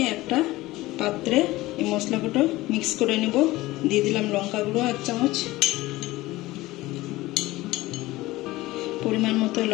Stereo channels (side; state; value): right; quieter; 18.6 dB